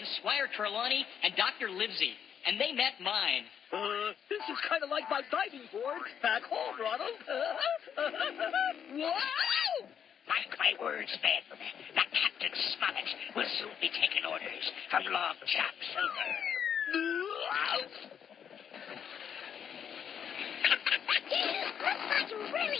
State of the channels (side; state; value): right; quieter; 8.2 dB